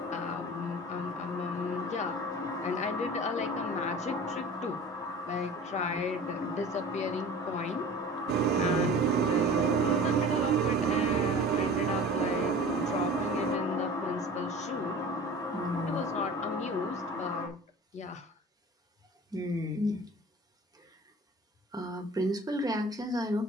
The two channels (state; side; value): normal; both; correlation 0.40